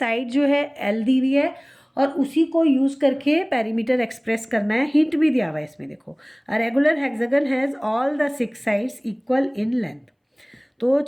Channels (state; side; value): identical; both; correlation 1.00